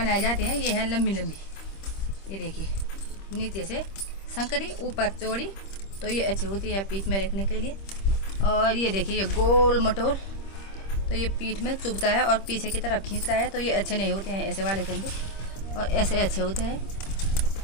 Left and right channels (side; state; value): right; late; 26 ms